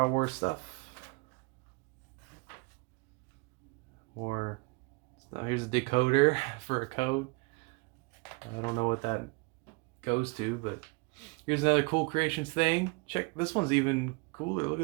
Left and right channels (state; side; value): quieter; left; 29.2 dB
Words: Wars stuff. More. Here's a decoder for a code. I don't know what that goes to, but here's another cool creations thing. Check, this one's even cooler. Look